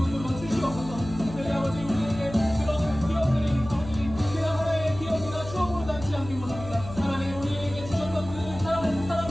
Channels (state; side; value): noise; left; hum, 12 dB below the sound